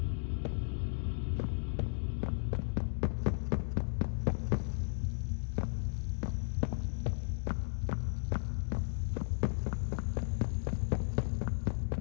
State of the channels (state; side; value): silent; right; digital silence